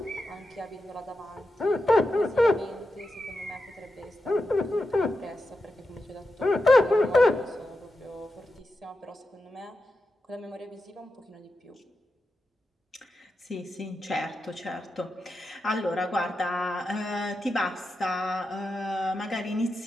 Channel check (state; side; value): normal; both; correlation 0.89